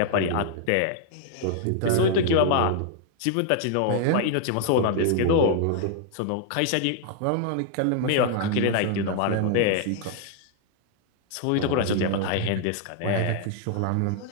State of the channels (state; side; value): different; both; correlation -0.01